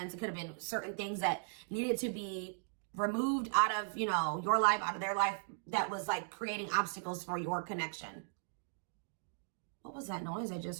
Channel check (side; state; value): left; silent; digital silence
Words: it could have been certain things that needed to be removed out of, you know, your life, out of their life, that was like creating obstacles for your connection. What was that noise I